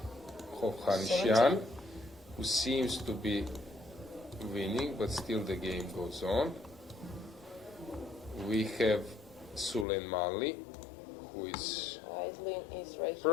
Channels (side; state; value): right; drops out; at 9.9 s